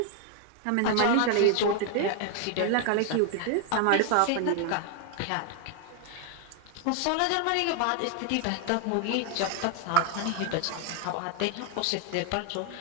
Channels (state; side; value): different; both; correlation 0.00